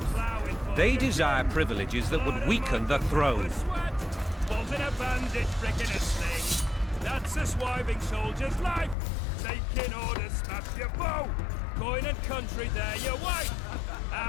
they desire privileges that would weaken the throne. In a bandit brick in a sling. That's a swiving soldier's life. Taking orders, smash your bow. Coin and country, there your wife.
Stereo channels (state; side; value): drops out; right; at 9.0 s